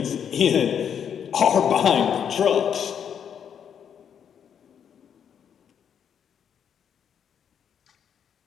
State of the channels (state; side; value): quieter; right; 8.2 dB